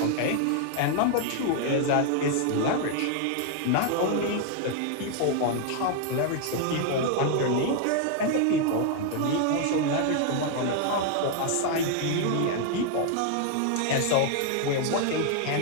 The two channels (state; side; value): different; both; correlation 0.00